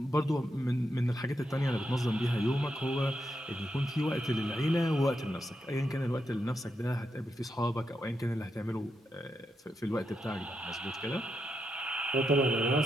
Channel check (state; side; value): normal; both; correlation 0.84